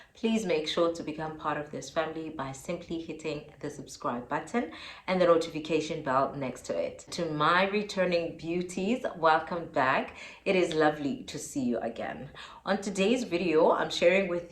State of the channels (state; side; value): identical; both; correlation 1.00